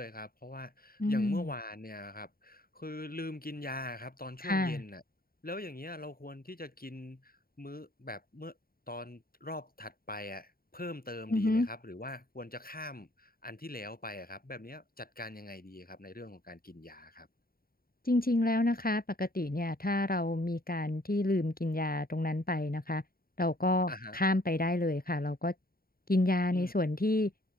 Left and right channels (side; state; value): right; late; 0.43 ms